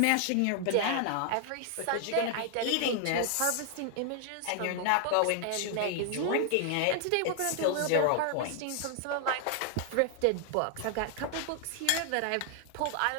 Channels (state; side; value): different; both; correlation 0.00